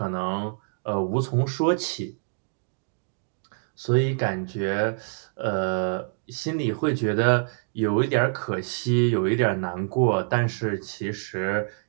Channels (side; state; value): left; silent; digital silence